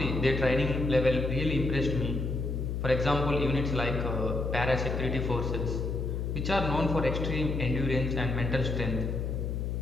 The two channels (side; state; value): left; noise; hum, 2 dB below the sound